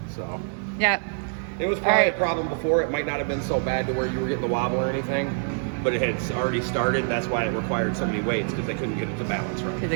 So Yep. it was probably Alright. a problem before. It might not have been so bad to where you were getting the wobble or anything, but it had already started. That's why it required so many weights, because they couldn't get it to balance right. Because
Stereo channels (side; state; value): left; silent; 61 dB below the other